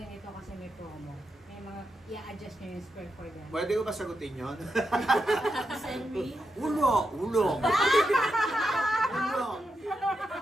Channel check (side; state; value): both; normal; correlation 0.85